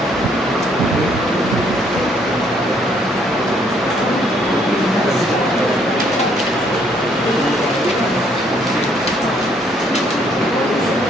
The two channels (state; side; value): normal; both; correlation 0.67